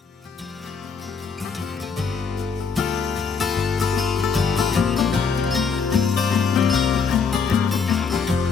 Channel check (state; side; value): quieter; right; 5.5 dB